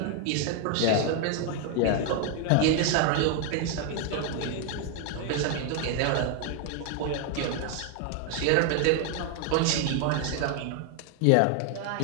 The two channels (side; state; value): both; different; correlation 0.00